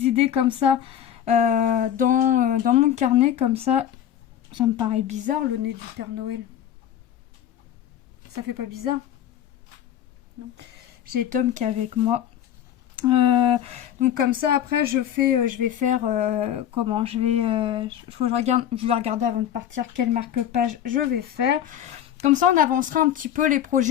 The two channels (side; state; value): right; quieter; 10.4 dB